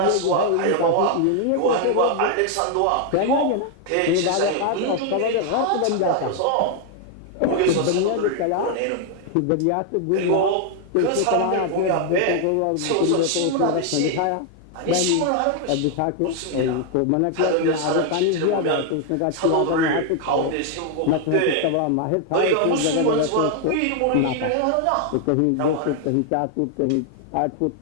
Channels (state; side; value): different; both; correlation 0.00